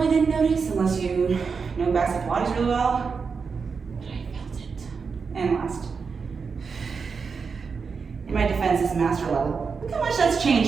didn't notice unless you know basic Pilates really well, but I felt it. And last. In my defense, it's master level. Look how much that's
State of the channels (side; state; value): left; quieter; 5.4 dB